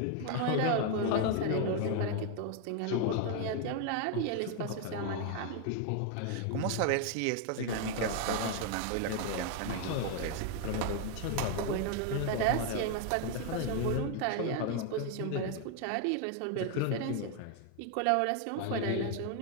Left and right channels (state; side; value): different; both; correlation 0.01